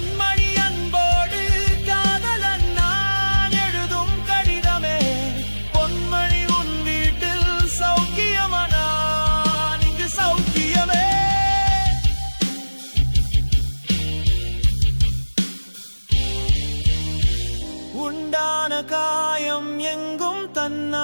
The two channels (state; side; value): inverted; both; correlation -1.00